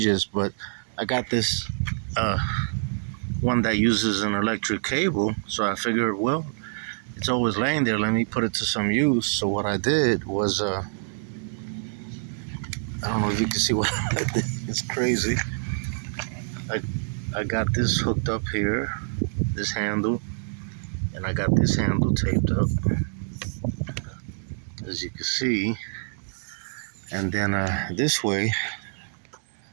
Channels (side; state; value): left; silent; digital silence